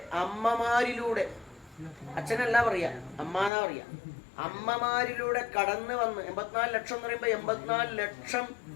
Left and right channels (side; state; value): right; drops out; at 3.5 s